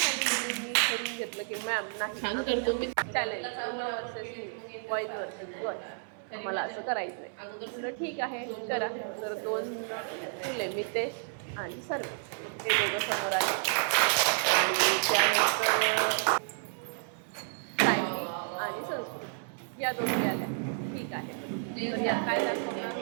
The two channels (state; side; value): silent; left; 55 dB below the other